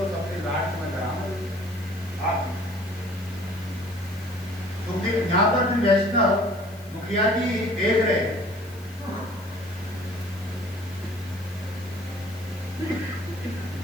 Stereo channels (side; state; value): left; noise; hiss, 24 dB below the sound